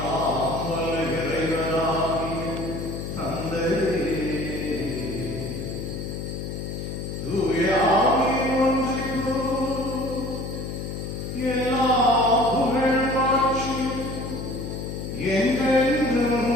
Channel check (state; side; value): noise; left; hum, 6 dB below the sound